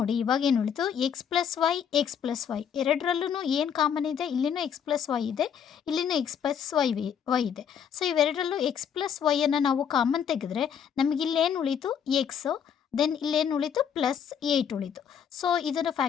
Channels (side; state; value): right; quieter; 8.0 dB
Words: ಇವಾಗ ಏನು ಉಳಿತು, ಎಕ್ಸ್ ಪ್ಲಸ್ ವೈ ಎರಡರಲ್ಲೂ ಏನು ಕಾಮನ್ ಇದೆ, ಇಲ್ಲಿನೂ ಎಕ್ಸ್ ಪ್ಲಸ್ ವೈ ಇದೆ, ಇಲ್ಲಿನೂ ಎಕ್ಸ್ ಪ್ಲಸ್ ವೈ ಇದೆ. ಸೊ ಇವೆರಡರಲ್ಲೂ ಎಕ್ಸ್ ಪ್ಲಸ್ ವೈಯನ್ನು ನಾವು ಕಾಮನ್ ತೆಗೆದ್ರೆ ನಮಗಿಲ್ಲೇನು ಉಳೀತು, ಎಕ್ಸು, ದೆನ್ ಇಲ್ಲೇನು ಉಳೀತು, ಪ್ಲಸ್ 8 ಉಳೀತು. ಸೊ ಇದನ್ನು